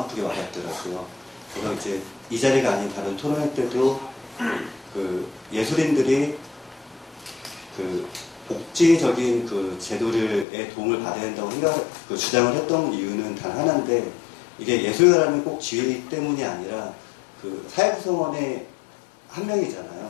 와닿더라고요. 그래서 이제 이 자리가 아닌 다른 토론회 때도 예술인들이 복지적인 제도의 도움을 받아야 된다고 주장을 했던 이유는 단 하나인데 이게 예술가라는 꼭 지위 때문이 아니라 사회 구성원의 한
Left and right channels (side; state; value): right; drops out; at 10.5 s